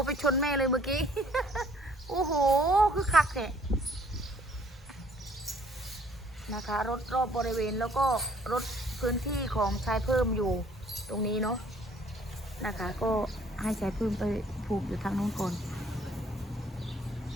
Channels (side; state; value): both; normal; correlation 0.60